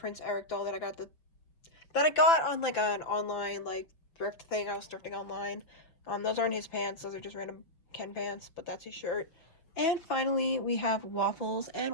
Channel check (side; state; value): right; late; 6.0 ms